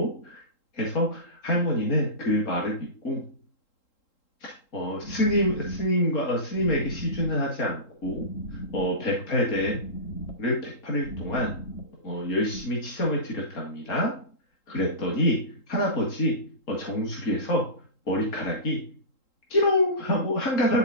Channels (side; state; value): right; late; 3.8 ms